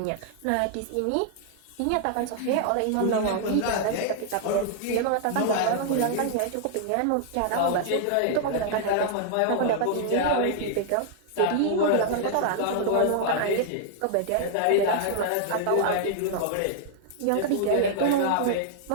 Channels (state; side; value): different; both; correlation -0.01